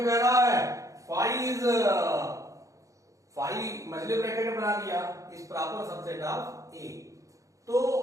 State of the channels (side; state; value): left; late; 0.16 ms